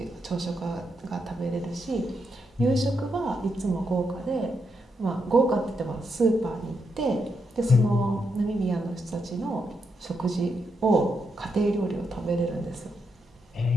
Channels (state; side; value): normal; both; correlation 0.82